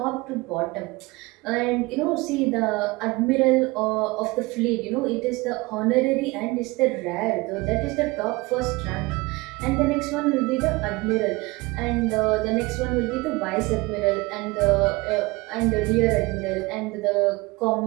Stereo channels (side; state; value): left; quieter; 23.1 dB